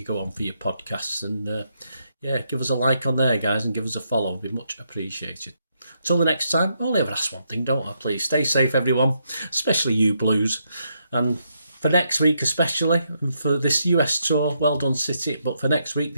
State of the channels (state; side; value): inverted; both; correlation -0.78